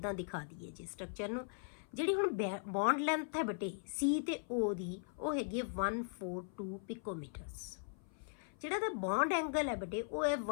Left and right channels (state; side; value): silent; right; 52 dB below the other